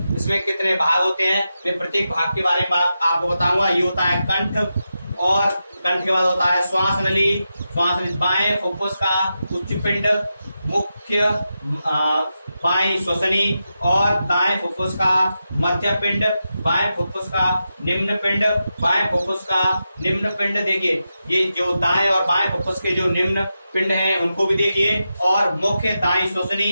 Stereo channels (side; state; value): both; inverted; correlation -0.89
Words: इसमें कितने भाग होते हैं मैं प्रत्येक भाग के बारे में आपको बताऊंगा। ये होता है कंठ, और कंठ के बाद होता है श्वास नली, श्वास नली बाएं फुफ्फुस का उच्च पिंड, मुख्य बाएं श्वसनी, और दाएं फुफ्फुस का मध्य पिंड, बाएं फुफ्फुस का निम्न पिंड, बाएं फुफ्फुस का निम्न पिंड। देखिए, ये जो दाएं और बाएं फुफ्फुस के जो निम्न पिंड हैं उनको भी देखिए, और मुख्य दाएं